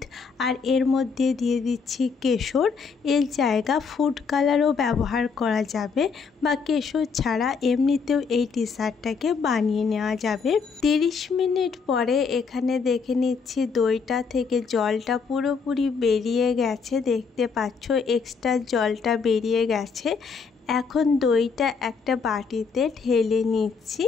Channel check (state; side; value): quieter; right; 5.4 dB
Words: আর এর মধ্যে দিয়ে দিচ্ছি কেশর। এর জায়গা ফুড কালারও ব্যবহার করা যাবে, বা কেশর ছাড়া এমনিতেও এই ডেজার্টটাকে বানিয়ে নেওয়া যাবে। 30 মিনিট পরে এখানে দেখে নিচ্ছি দইটা থেকে জলটা পুরোপুরি বেরিয়ে গেছে। দেখতে পাচ্ছ এক্সট্রা জলটা বেরিয়ে গেছে। এখন দইটা একটা বাটিতে ঢেলে নিচ্ছি।